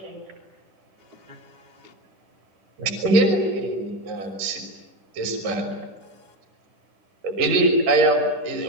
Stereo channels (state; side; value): late; left; 10 ms